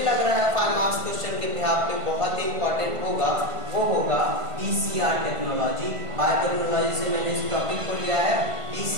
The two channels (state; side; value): late; left; 1.5 ms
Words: लग रहा है 5 मार्क्स क्वेश्चन के बिहाफ पे बहुत ही इंपॉर्टेंट होगा वो होगा PCR टेक्नोलॉजी। बायोटेक्नोलॉजी से मैंने इस टॉपिक को लिया है,